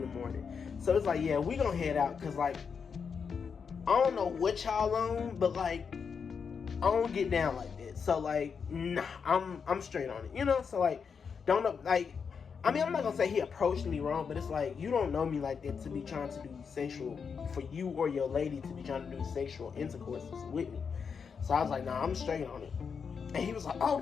So it's like, yeah, we gonna head out. Cause like, I don't know what y'all on, but like, I don't get down like that. So like, nah, I'm straight on it, you know. So like, don't know, like, I mean, I'm not gonna say he approached me wrong, but it's like, you don't know me like that to be trying to do sexual, for you or your lady to be trying to do sexual intercourse with me. So I was like, nah, I'm straight on it. And he was like, oh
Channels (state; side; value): quieter; right; 6.1 dB